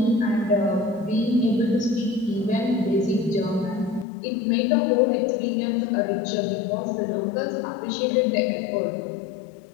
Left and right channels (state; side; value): drops out; right; at 4.0 s